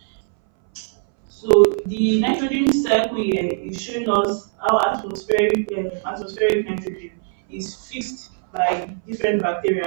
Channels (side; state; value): left; silent; 61 dB below the other